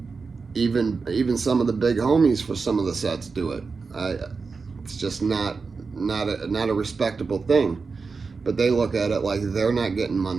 Even some of the big homies for some of the sets do it. It's just not a respectable thing. But they look at it like they're not getting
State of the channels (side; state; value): left; quieter; 4.7 dB